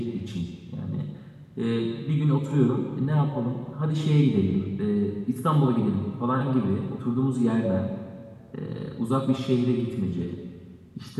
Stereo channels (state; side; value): identical; both; correlation 1.00